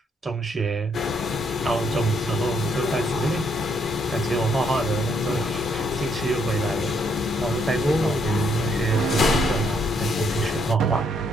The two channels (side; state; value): both; normal; correlation 0.72